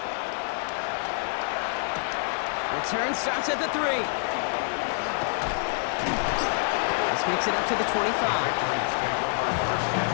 Return starts at the 3. This makes it up to the 25. Patriots take over 1st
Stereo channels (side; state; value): right; silent; 60 dB below the other